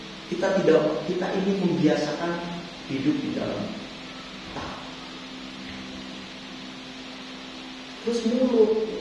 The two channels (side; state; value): both; identical; correlation 1.00